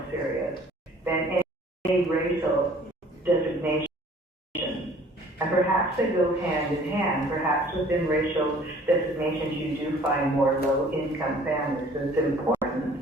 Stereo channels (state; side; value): normal; both; correlation 0.53